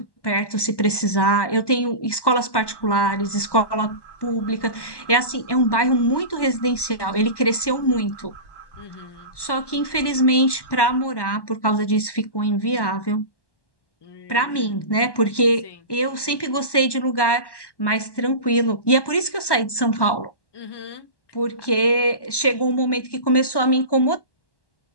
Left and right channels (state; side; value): late; right; 1.1 ms